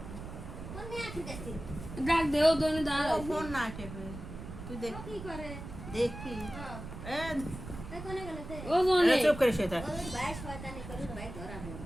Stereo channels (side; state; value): right; noise; rumble, 10 dB below the sound